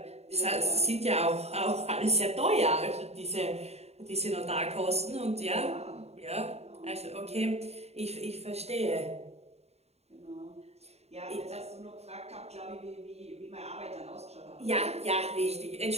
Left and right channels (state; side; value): late; left; 0.31 ms